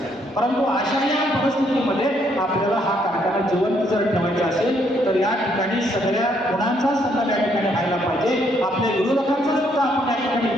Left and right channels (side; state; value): both; normal; correlation 0.71